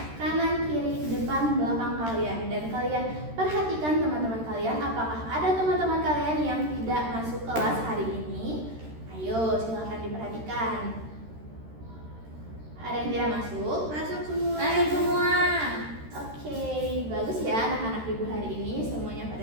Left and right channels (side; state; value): left; late; 13 ms